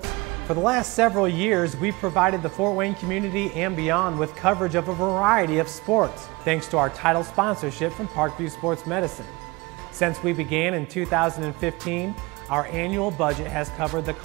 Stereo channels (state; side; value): quieter; left; 23.9 dB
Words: For the last several years, we've provided the Fort Wayne community and beyond with coverage of a variety of sports, thanks to our title sponsorship from Parkview Sports Medicine. Since we began in 2015, our annual budget has covered the